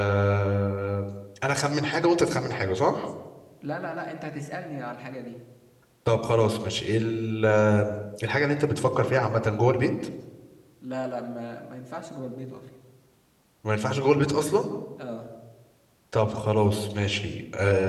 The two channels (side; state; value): both; identical; correlation 1.00